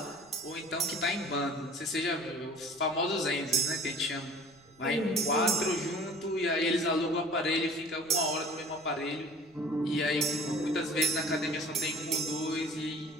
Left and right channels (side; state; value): right; noise; rumble, 30 dB below the sound